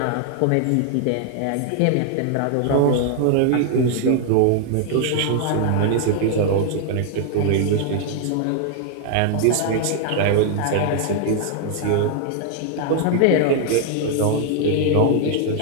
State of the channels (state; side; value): different; both; correlation 0.00